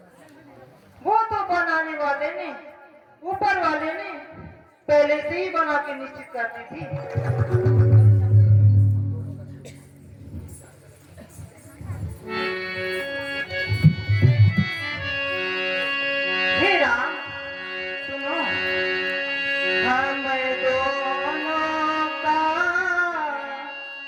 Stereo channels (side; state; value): both; identical; correlation 1.00